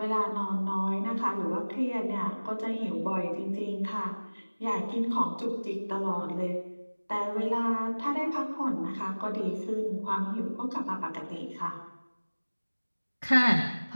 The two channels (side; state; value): both; inverted; correlation -1.00